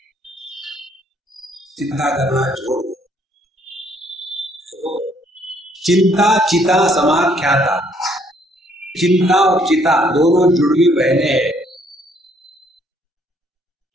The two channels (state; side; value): normal; both; correlation 0.66